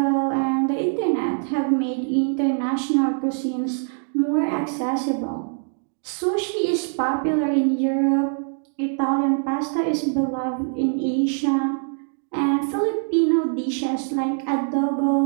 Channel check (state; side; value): silent; left; 61 dB below the other